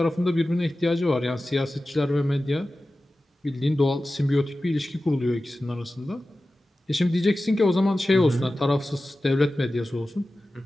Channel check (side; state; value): both; normal; correlation 0.95